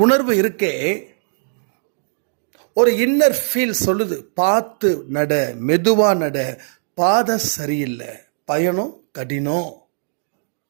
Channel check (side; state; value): left; silent; digital silence